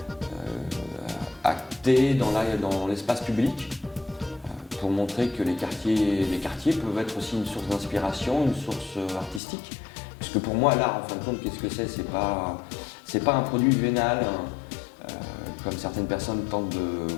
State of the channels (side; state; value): right; drops out; at 9.4 s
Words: acter dans l'espace public pour montrer que les quartiers peuvent être aussi une source d'inspiration, une source artistique. Puisque pour moi, l'art, en fin de compte, qu'est-ce que c'est ? C'est pas un produit vénal, comme certaines personnes tentent de